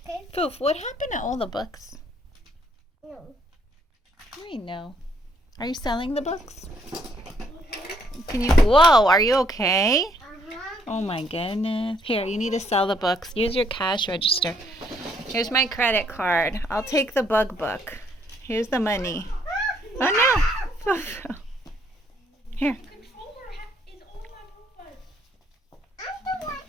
Foof, what happened to all the books? No. I know. Are you selling the books? Can you? Whoa, are you okay? Oh my goodness. Here, you need to sell the books. Use your cash register. Here's my credit card. I'll take the bug book. Here's the money. Oh no. Here.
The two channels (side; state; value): both; normal; correlation 0.69